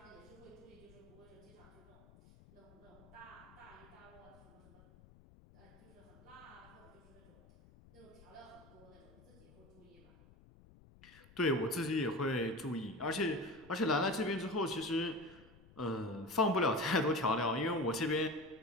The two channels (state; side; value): noise; left; rumble, 23 dB below the sound